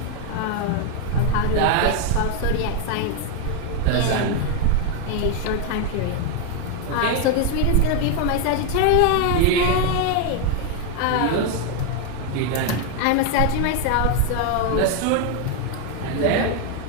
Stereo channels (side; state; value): both; different; correlation 0.00